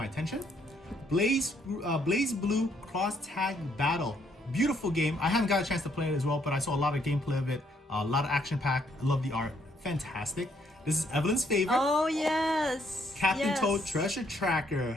attention. Blaze Blue Cross Tag Battle. Beautiful game. I haven't got a chance to play it as well, but I saw a lot of gameplay of it. A lot of action packed. I love the art. Fantastic. This is Evelyn's favorite. Oh yes. Captain yes. Toad Treasure Tracker.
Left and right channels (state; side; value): normal; both; correlation 0.70